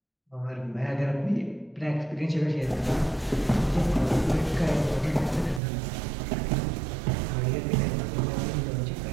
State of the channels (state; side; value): drops out; left; at 5.6 s